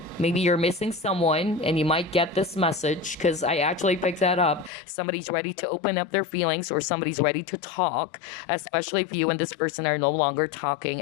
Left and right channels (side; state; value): right; drops out; at 4.7 s